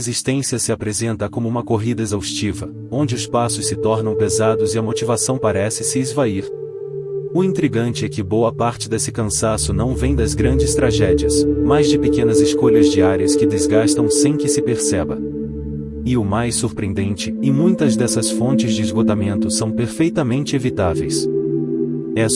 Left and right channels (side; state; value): both; identical; correlation 1.00